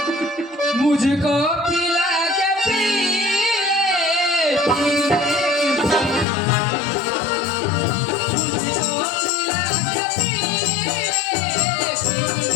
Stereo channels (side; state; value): right; drops out; at 6.2 s